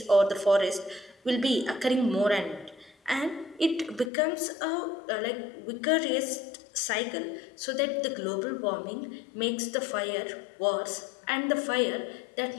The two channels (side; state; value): right; drops out; at 4.1 s